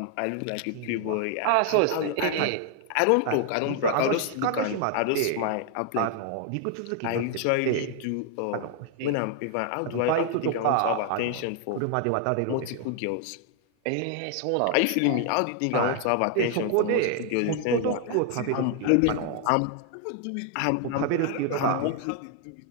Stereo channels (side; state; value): both; different; correlation 0.00